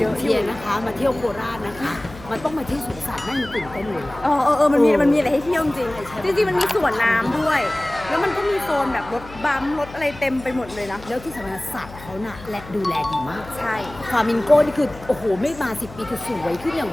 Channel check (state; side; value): noise; left; hum, 17 dB below the sound